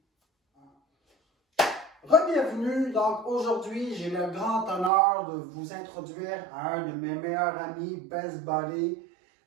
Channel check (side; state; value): left; drops out; at 4.9 s